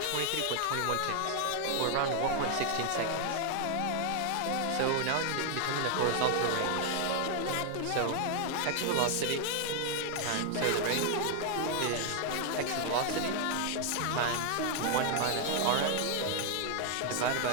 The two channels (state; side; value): different; both; correlation 0.00